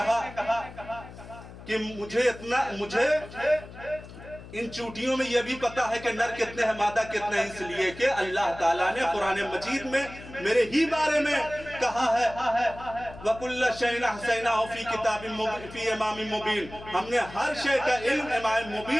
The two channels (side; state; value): left; noise; hum, 16 dB below the sound